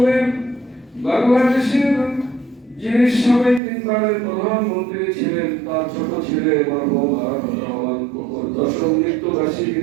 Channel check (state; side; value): drops out; left; at 3.6 s